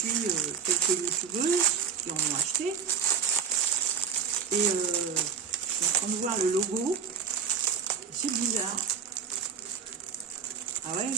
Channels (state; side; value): quieter; left; 6.6 dB